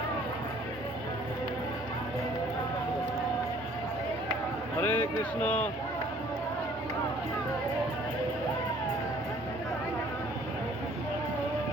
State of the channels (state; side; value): normal; both; correlation 0.57